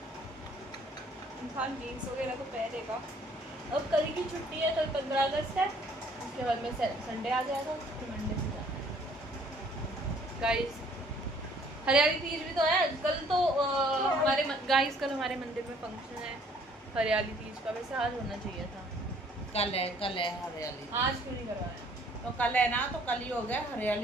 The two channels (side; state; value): both; normal; correlation 0.59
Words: इंसान जीन्स वगैरह तो पहनेगा। अब कल की छुट्टी है, कल 15 अगस्त है, उसके बाद में संडे आ जाएगा, फिर मंडे से जाना है। गाइस हरियाली तीज भी तो है कल, तो हमारे गाइस कल हमारे मंदिर में फंक्शन है हरियाली तीज का। वैसे आज होना चाहिए था, कल है हरियाली। आज क्यों नहीं करवाया? तो कल है ना, तो कल ही हो गया,